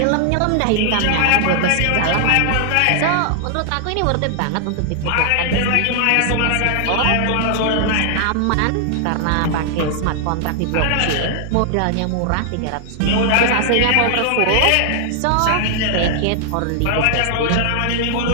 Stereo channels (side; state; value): both; different; correlation -0.01